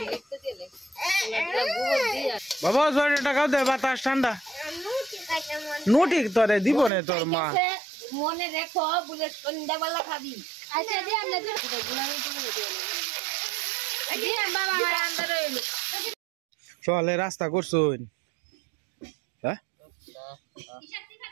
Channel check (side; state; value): left; drops out; at 6.9 s